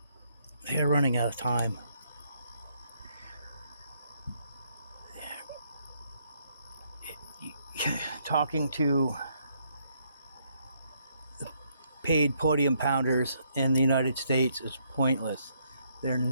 They're running out of time. Talking to paid podium pounders in the United States is pointless. They're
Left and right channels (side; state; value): both; inverted; correlation -0.73